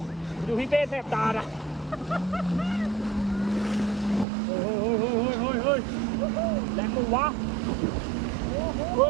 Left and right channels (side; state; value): left; drops out; at 4.2 s